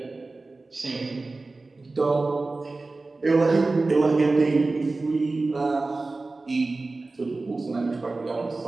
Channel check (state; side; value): quieter; left; 3.4 dB